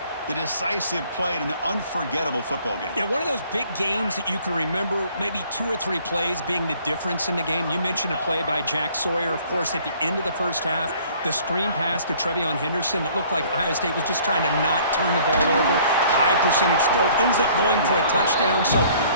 The decisive play in an unforgettable football game. Yeah, one of those big games that you can remember, maybe 2 or 3 plays being the difference in the game. You mentioned a play by Jack Sawyer, of course, at the end of the first half. The screen pass to Trevion Henderson that looked like Ohio State was just trying to not turn the ball over. High percentage throw, ends up going for a touchdown. So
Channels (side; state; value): both; inverted; correlation -0.56